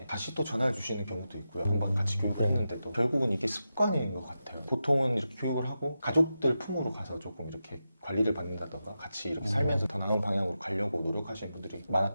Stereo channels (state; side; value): inverted; both; correlation -0.90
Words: 다시 또 전화를 주시는 경우도 있고요. 금방 같이 교육을 했는데도 결국은 이게 습관인 것 같아요. 보통은 이렇게 교육을 하고 가족들 품으로 가서 조금 이렇게 관리를 받는다던가 같이 이렇게 살면서 더 나은 방향으로 가려고 노력하시는 분들이